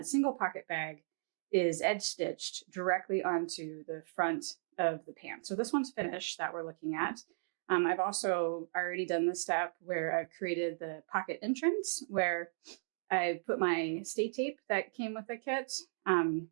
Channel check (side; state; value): left; silent; digital silence